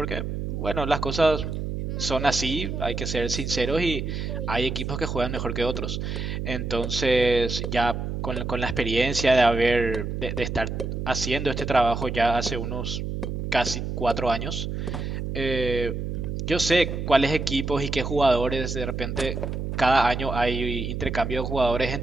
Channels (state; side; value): noise; right; hum, 4 dB below the sound